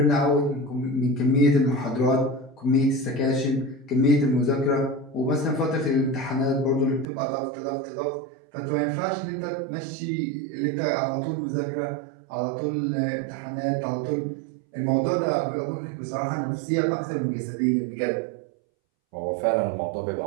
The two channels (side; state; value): left; drops out; at 7.1 s